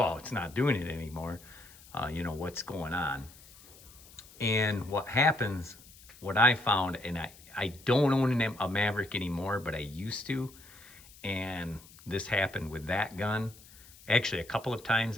it's not doing it anymore. You know, what's going on? And what happens, what I found, and I don't own a Maverick anymore, but I used to. And this happened with that gun. Actually, a couple of times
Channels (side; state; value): left; noise; hiss, 22 dB below the sound